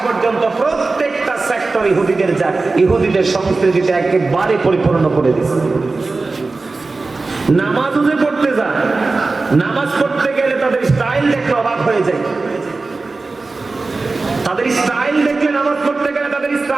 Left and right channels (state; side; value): quieter; left; 3.7 dB